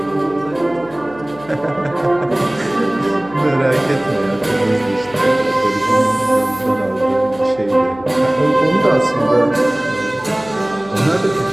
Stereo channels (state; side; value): noise; left; hum, 21 dB below the sound